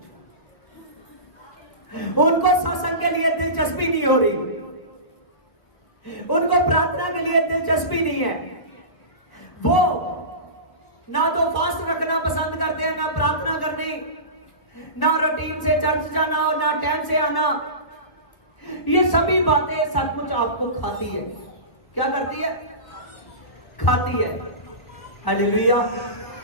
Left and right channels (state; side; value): late; right; 1.6 ms